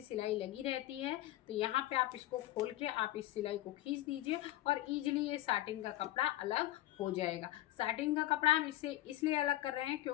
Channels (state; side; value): quieter; right; 15.2 dB